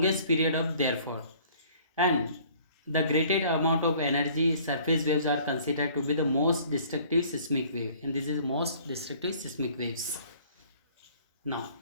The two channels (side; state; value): both; inverted; correlation -0.54